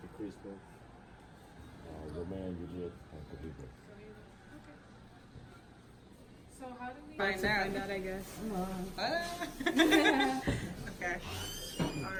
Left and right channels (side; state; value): both; identical; correlation 1.00